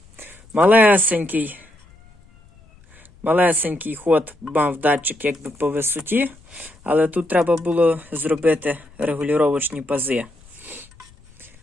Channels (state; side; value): noise; left; rumble, 27 dB below the sound